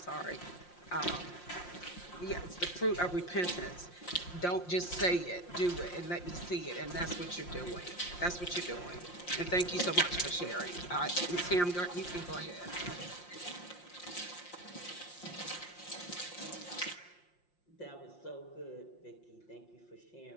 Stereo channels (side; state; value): right; late; 5.7 ms